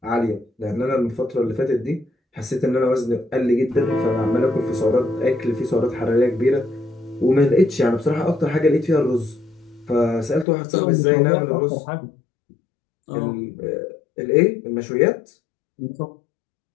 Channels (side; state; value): right; drops out; at 10.5 s